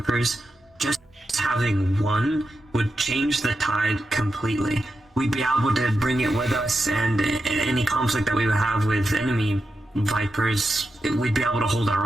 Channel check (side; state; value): both; normal; correlation 0.88